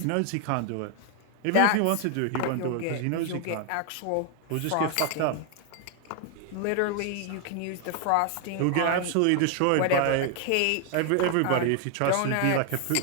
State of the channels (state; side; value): different; both; correlation 0.00